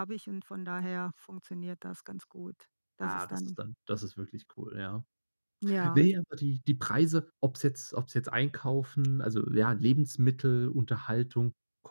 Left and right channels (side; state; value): both; inverted; correlation -1.00